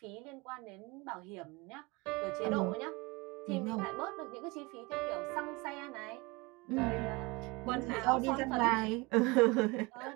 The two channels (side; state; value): left; quieter; 25.1 dB